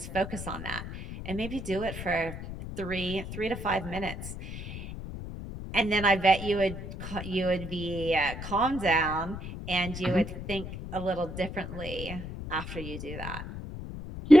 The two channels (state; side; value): noise; left; rumble, 9 dB below the sound